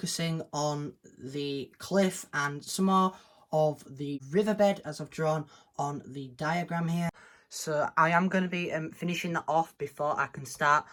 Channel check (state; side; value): identical; both; correlation 1.00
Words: on the cliff and some more of the riverbed as I've drawn on the diagram here. So I am going to be finishing that off before I can start